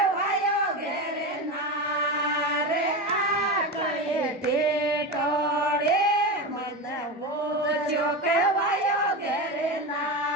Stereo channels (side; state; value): both; normal; correlation 0.20